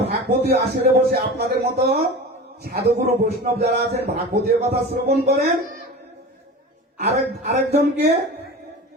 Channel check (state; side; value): normal; both; correlation 0.33